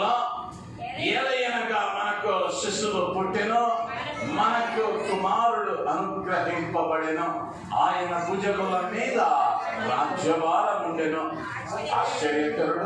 ఏలయనగా మనకు శిశువు పుట్టెను, మనకు కుమారుడు అనుగ్రహింపబడెను, ఆయన భుజముల మీద రాజ్యభారం ఉండెను,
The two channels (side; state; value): both; identical; correlation 1.00